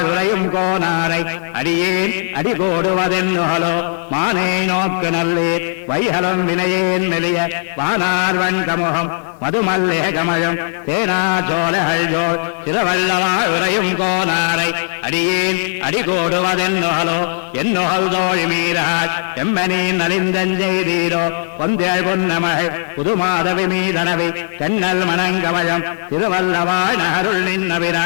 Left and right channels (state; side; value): silent; right; 63 dB below the other